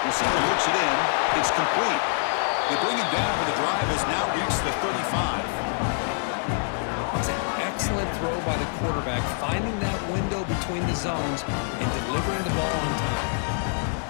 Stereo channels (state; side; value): silent; right; digital silence